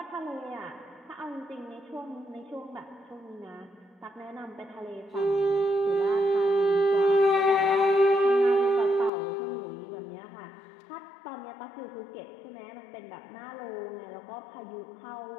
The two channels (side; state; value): right; drops out; at 9.1 s